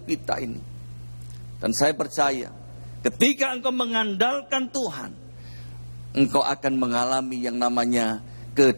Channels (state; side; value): inverted; both; correlation -1.00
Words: kita ini. Dan saya percaya, ketika engkau mengandalkan Tuhan, engkau akan mengalami yang namanya